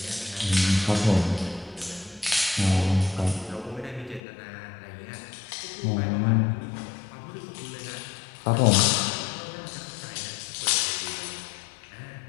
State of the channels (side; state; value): right; drops out; at 4.2 s